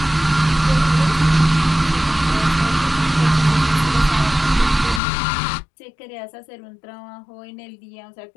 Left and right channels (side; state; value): right; drops out; at 5.0 s